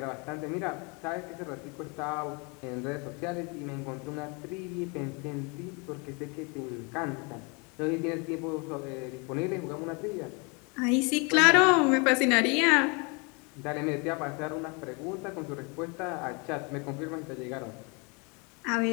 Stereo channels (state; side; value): quieter; right; 31.5 dB